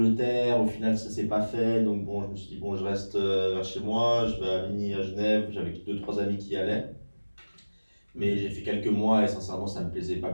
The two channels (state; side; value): inverted; both; correlation -1.00